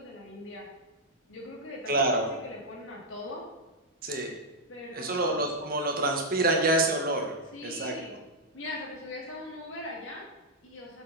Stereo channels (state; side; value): normal; both; correlation -0.04